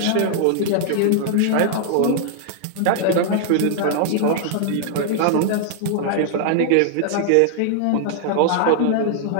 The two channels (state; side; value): different; both; correlation 0.00